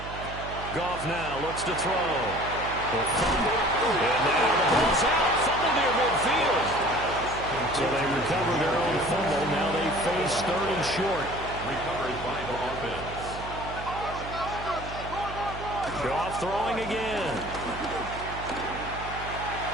Goff now looks to throw. And now the ball's out. Fumble near midfield. So they recover their own fumble. Now they face 3rd and short. Recovered by the offense. Goff throwing again.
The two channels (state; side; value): noise; right; hum, 11 dB below the sound